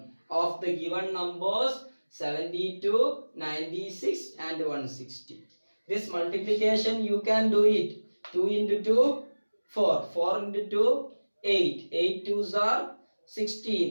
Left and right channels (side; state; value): both; inverted; correlation -1.00